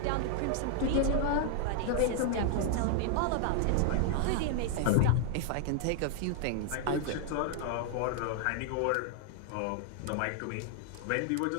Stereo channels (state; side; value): different; both; correlation 0.00